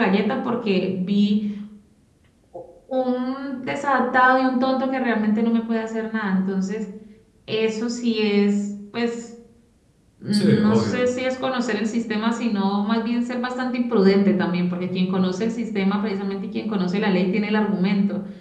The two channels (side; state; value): both; identical; correlation 1.00